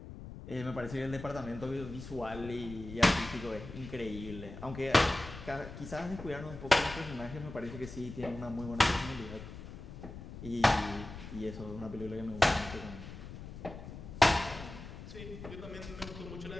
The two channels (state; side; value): noise; left; rumble, 12 dB below the sound